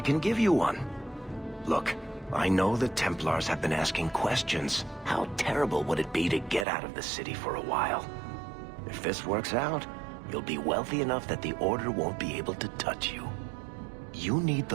can give you one. Look, I know the Templars have been asking questions. How terrible would it be to get out of the city for a while? If this works out, you'll be wealthy enough that the Order won't be able to touch you. You need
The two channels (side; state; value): left; drops out; at 6.7 s